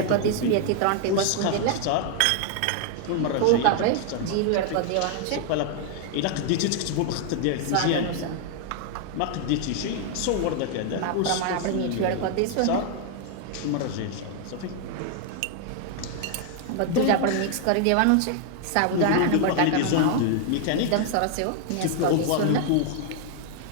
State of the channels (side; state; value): both; different; correlation 0.00